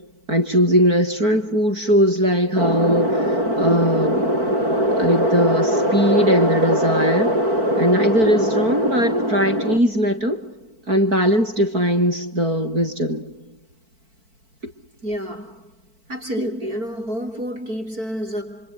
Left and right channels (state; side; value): late; left; 4.5 ms